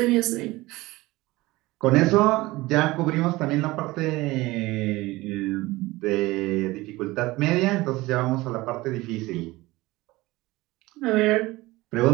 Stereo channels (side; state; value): left; quieter; 20.0 dB